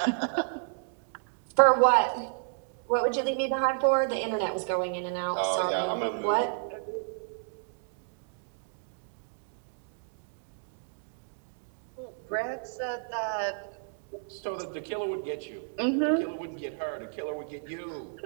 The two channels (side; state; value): left; silent; digital silence